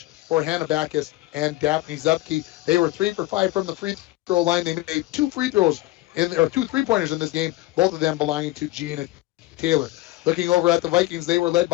for Hannah Backus and Daphne Zupke. They were 3 for 5 from the free throw line. They made 2 free throws or 2 3-pointers in this game, both of them belonging to Gina Taylor. Looking over at the Vikings, they were led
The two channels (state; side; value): quieter; right; 17.9 dB